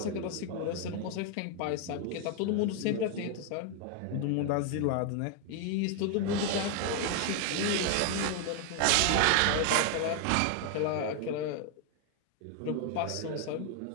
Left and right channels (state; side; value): different; both; correlation 0.01